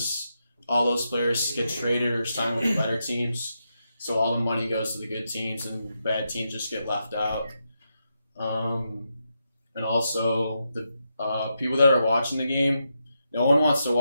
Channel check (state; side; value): inverted; both; correlation -0.84